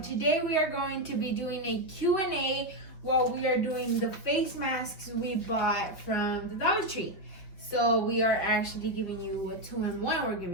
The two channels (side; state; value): right; late; 5.5 ms